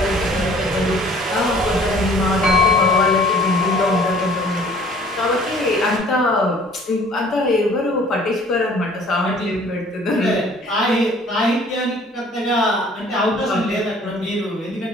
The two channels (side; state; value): both; normal; correlation 0.53